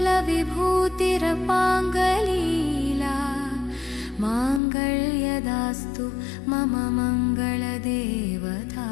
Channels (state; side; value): drops out; right; at 4.6 s